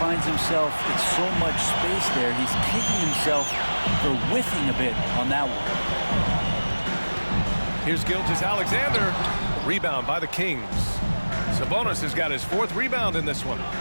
finds himself in so much space there. He's kicking himself for whiffing a bit on that one. Here's Gilgeous-Alexander. Rebound by the Kings. Sabonis has got his 4th rebound in this one.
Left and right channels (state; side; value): inverted; both; correlation -1.00